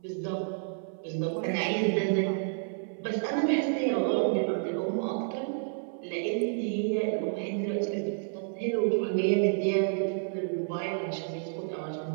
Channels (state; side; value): silent; left; 55 dB below the other